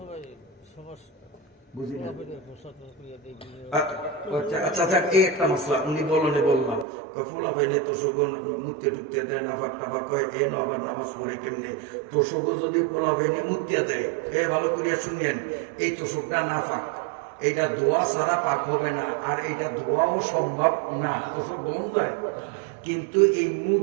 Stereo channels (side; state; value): left; drops out; at 6.9 s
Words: বুঝি না। আচ্ছা যাক, এই একটা মশলা উনি বলনে বললাম, ফুলা ভাইনে তোষক মুতে টুকতে দেয়, নাফাক টাফাক কয়, এ আবার নামাজ পড়ে কেমনে? তোষক যদি পোলা ভাইনে মুতিয়া দেয়, এ ভালো করিয়া শুনিয়েন, এই তোষকটা নাফাক, এইটা ধোয়া ছাড়া পাক হবে না, আর এইটা ধোয়াও সম্ভব না, তোষক দম যায়। কিন্তু এই মুখ